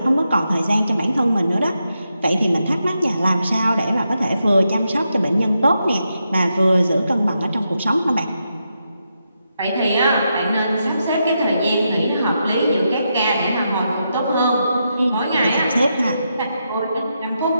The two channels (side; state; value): both; inverted; correlation -0.84